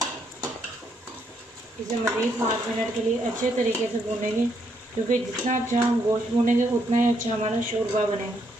इसे मज़ीद 5 मिनट के लिए अच्छे तरीके से भूनेंगे, क्योंकि जितना अच्छा हम गोश्त भूनेंगे उतना ही अच्छा हमारा शोरबा बनेगा।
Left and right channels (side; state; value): both; normal; correlation 0.74